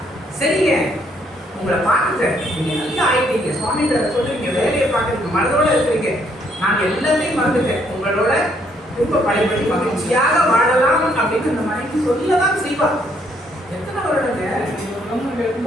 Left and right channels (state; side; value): normal; both; correlation 0.69